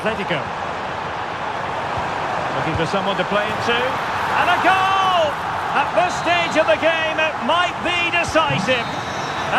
Looking for someone to play it to. And a goal! At this stage of the game, it might be decisive.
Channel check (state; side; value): identical; both; correlation 1.00